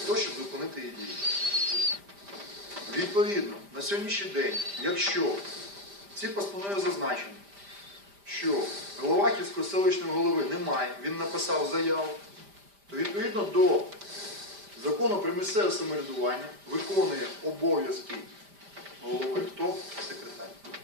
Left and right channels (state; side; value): late; left; 5.0 ms